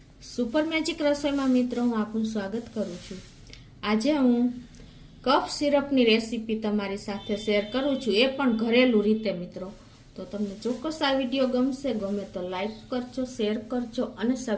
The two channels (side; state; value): both; identical; correlation 1.00